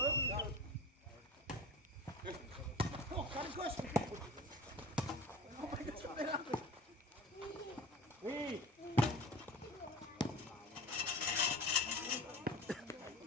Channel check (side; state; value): both; normal; correlation 0.36